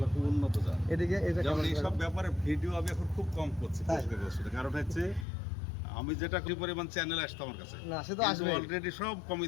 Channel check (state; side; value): drops out; right; at 5.2 s